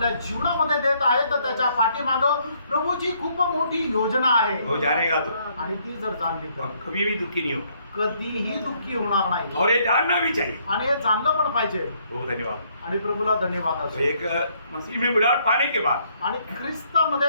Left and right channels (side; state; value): both; inverted; correlation -0.68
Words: जीवनामध्ये देत आहे तर त्याच्या पाठीमागं प्रभूची खूप मोठी योजना आहे. वो जानेगा तो आणि ती जर जाणली तर हम कभी भी दुखी नहीं होगा कधीही दुःखी होणार नाही. और ये जानना भी चाहिए। आणि हे जाणलं पण पाहिजे. बहुत धन्यवाद। आणि प्रभूला धन्यवाद तो असो. एक मसीह में बुलाहट पाने के बाद आणि